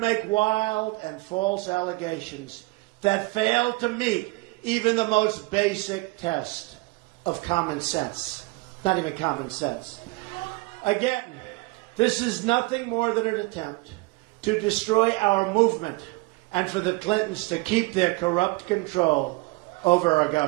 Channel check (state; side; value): quieter; left; 23.8 dB